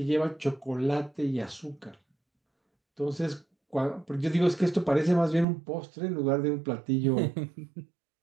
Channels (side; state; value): left; drops out; at 5.5 s